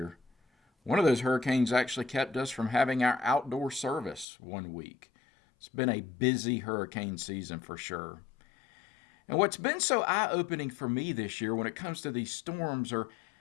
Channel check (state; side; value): drops out; right; at 4.2 s